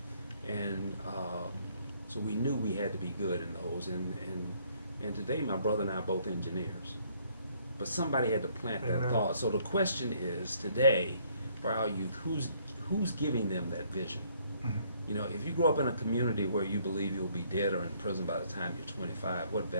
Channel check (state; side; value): inverted; both; correlation -0.65